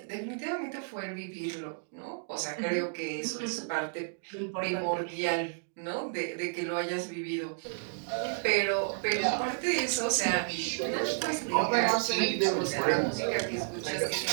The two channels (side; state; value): left; silent; digital silence